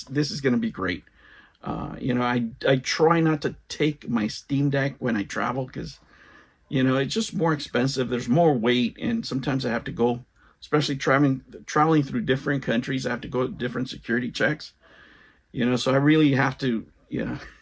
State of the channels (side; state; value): both; identical; correlation 1.00